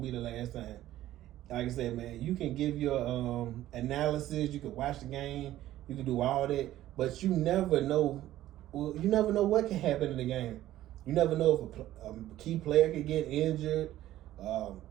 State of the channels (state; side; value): quieter; left; 14.0 dB